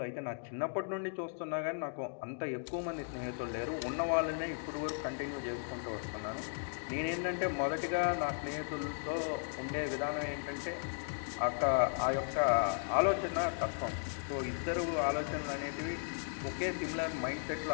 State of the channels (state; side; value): silent; right; digital silence